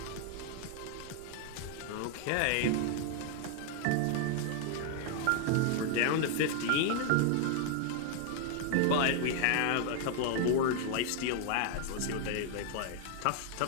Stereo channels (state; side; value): different; both; correlation 0.00